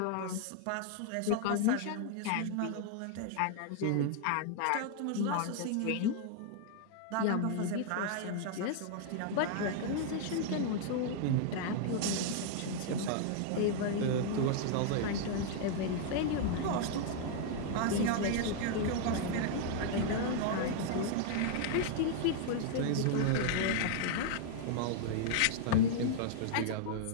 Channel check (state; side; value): different; both; correlation 0.00